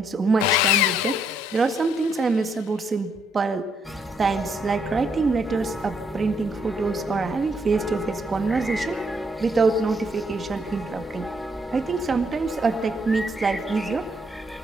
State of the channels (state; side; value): normal; both; correlation 0.73